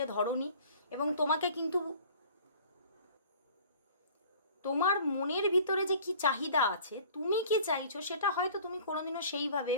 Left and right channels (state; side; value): inverted; both; correlation -0.48